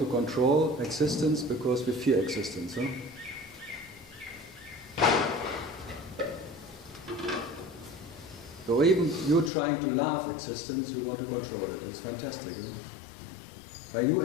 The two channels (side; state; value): right; drops out; at 9.5 s